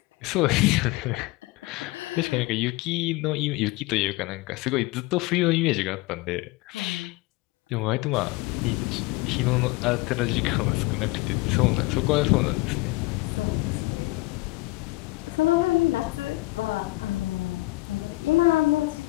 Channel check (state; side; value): quieter; right; 21.3 dB